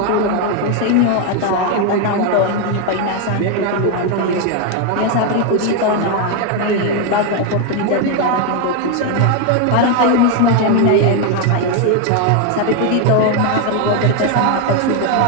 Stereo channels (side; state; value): both; different; correlation 0.01